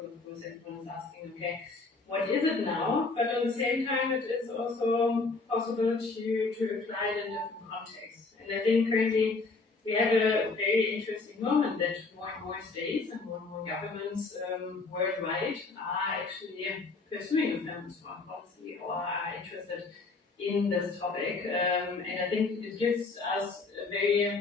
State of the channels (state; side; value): quieter; right; 3.9 dB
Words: of course everyone is asking, okay, what is it now? But at the same time, it is also possible to apply it in different contexts. And I think currently we have a very interesting moment that more and more states and more governments worldwide are actually pursuing a feminist foreign policy, or are interested in this topic. And I think it gives us a